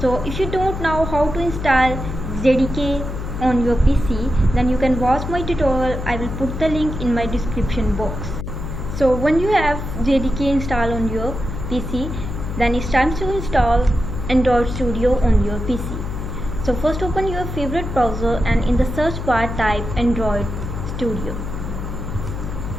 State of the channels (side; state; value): left; noise; hum, 6 dB below the sound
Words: if you don't know how to install JDK on your PC, then you can watch my tutorial. I will put the link in my description box. So when you have JDK installed on your PC, then it's time to install Android Studio on your PC. So first open your favorite browser and in the search bar type Android Studio.